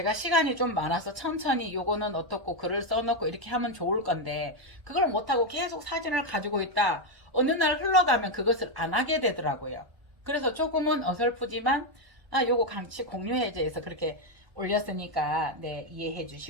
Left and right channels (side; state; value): left; late; 1.3 ms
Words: 시간이 좀 많아서 천천히 요거는 어떻고 글을 써놓고 이렇게 하면 좋을 건데 그걸 못하고 계속 사진을 가지고 있다. 어느 날 흘러가면 그것을 안 하게 되더라고요. 그래서 조금은 어설프지만 요거 같이 공유해제해서 그렇게 올렸으니까 네 이해해